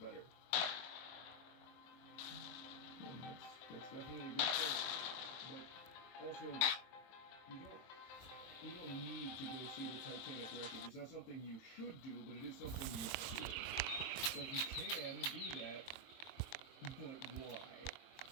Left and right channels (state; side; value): late; right; 23 ms